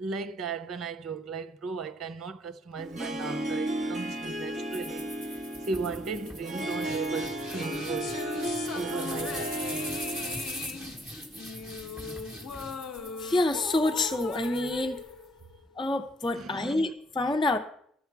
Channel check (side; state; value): both; normal; correlation 0.66